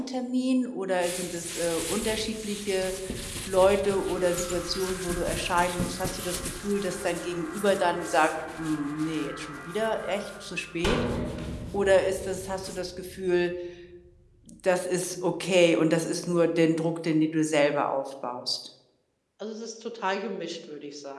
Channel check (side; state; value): both; identical; correlation 1.00